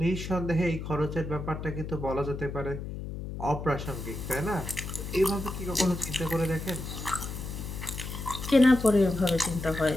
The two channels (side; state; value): left; noise; hum, 7 dB below the sound